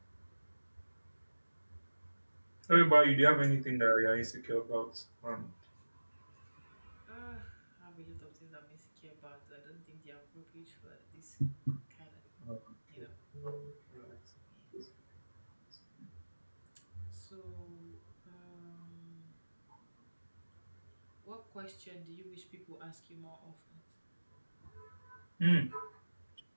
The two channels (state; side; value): inverted; both; correlation -1.00